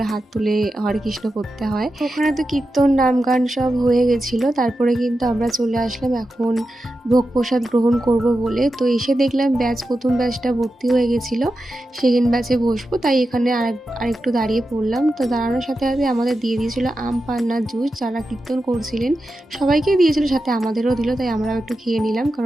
হাত তুলে হরে কৃষ্ণ করতে হয়। ওখানে তো কীর্তন নাম গান সব হয়ে গেছিলো। তারপরে কিন্তু আমরা চলে আসলাম এখন ভোগ প্রসাদ গ্রহণ করব বলে। তো এসে দেখলাম প্রথম ব্যাচটা ভর্তি হয়ে গেছিলো, সেকেন্ড ব্যাচে বসবো, তাই এখানে আরেকটু দাঁড়িয়ে পড়লাম। তো দাঁড়ানোর সাথে সাথে আমাদের দিয়ে দিয়েছিলো আম পান্নার জুস। যারা কীর্তন করছিলেন সবাইকেই দিয়েছিল, সাথে আমাদেরও দিল, তাই আমরাও একটু খেয়ে নিলাম।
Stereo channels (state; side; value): normal; both; correlation 0.90